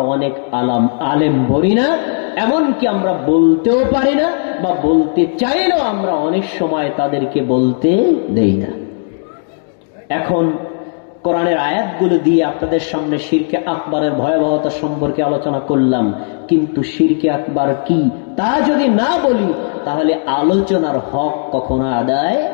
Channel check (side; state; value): right; silent; 60 dB below the other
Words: অনেক আলেম বলি না, এমনকি আমরা বলতেও পারি না, বা বলতে চাইলেও আমরা অনেক সময় তাদেরকে বলতে দেই না। এখন কোরআনের আয়াতগুলো দিয়ে আপনাদের সামনে শিরকে আকবরের ভয়াবহতা সম্পর্কে আলোচনা করলাম, কিন্তু শিরকে আকবার কি তা যদি না বলি তাহলে আলোচনার হক কখনো আদায়